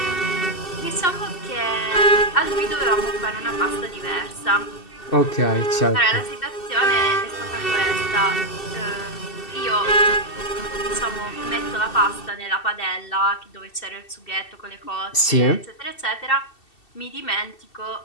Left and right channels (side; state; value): right; late; 2.7 ms